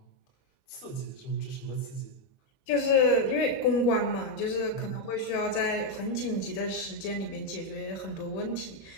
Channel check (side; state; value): right; late; 21 ms